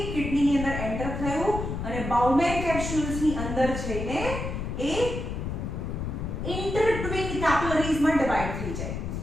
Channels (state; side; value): noise; left; rumble, 4 dB below the sound